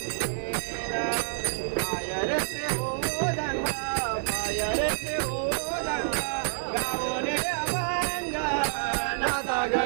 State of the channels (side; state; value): left; silent; 59 dB below the other